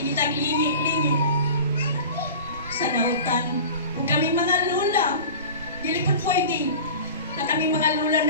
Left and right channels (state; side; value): inverted; both; correlation -0.36